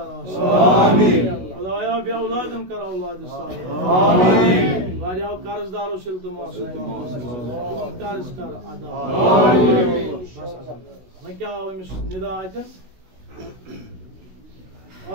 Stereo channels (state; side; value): late; left; 16 ms